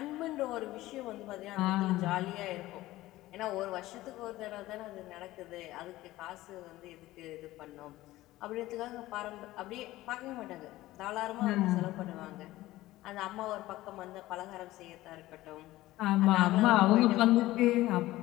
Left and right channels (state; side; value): quieter; right; 16.9 dB